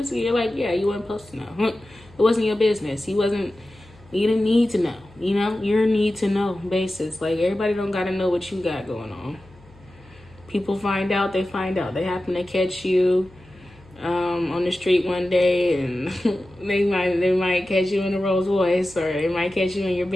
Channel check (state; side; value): noise; left; hum, 25 dB below the sound